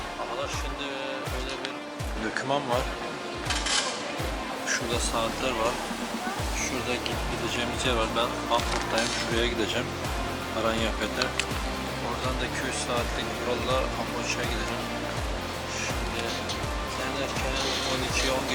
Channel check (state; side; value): identical; both; correlation 1.00